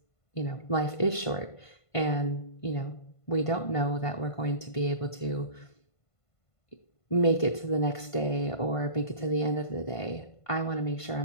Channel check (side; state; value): right; late; 1.5 ms